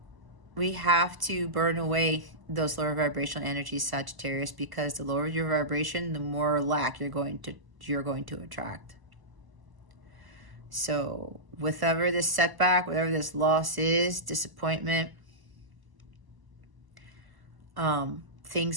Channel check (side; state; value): left; late; 1.0 ms